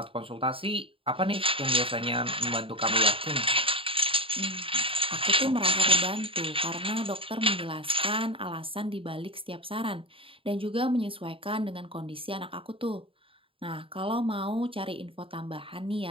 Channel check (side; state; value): left; late; 0.26 ms